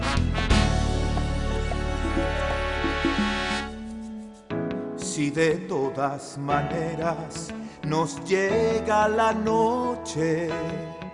Si de todas maneras nos llega la noche,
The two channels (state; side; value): identical; both; correlation 1.00